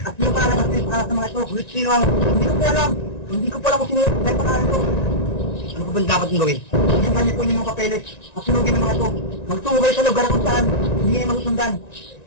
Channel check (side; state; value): right; late; 1.9 ms